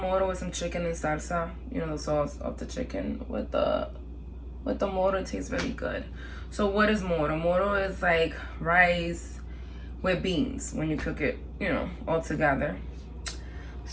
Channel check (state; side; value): identical; both; correlation 1.00